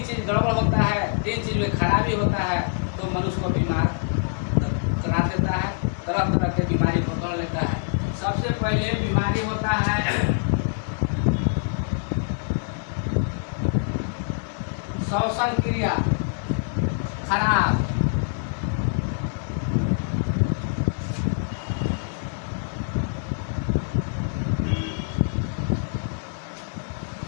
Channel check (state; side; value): silent; right; 62 dB below the other